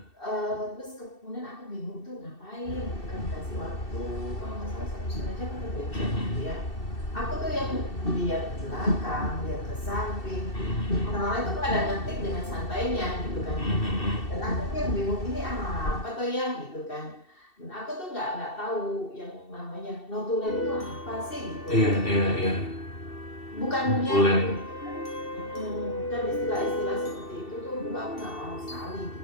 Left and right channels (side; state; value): right; late; 2.7 ms